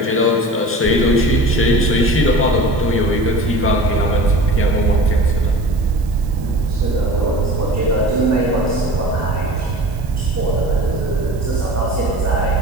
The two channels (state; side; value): noise; right; hiss, 25 dB below the sound